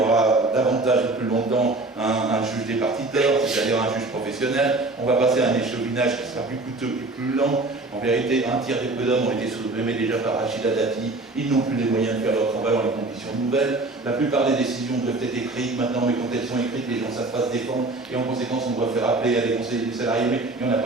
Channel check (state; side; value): quieter; left; 3.1 dB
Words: davantage et plus longtemps un juge départiteur, c'est-à-dire un juge professionnel. On va passer à un échevinage qui sera plus coûteux et plus lent. En vérité, un tiers des prud'hommes ont été supprimés déjà par Rachida Dati. Ils n'ont plus les moyens de faire leur travail dans les conditions nouvelles. La plupart des décisions doivent être écrites maintenant, mais quand elles sont écrites, les gens ne savent pas se défendre. Et en conséquence, on doit faire appeler à des conseillers des salariés, mais il n'y en a